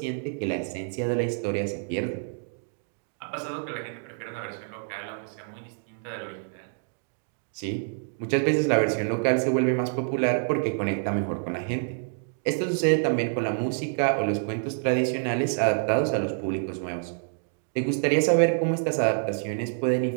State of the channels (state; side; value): silent; left; 60 dB below the other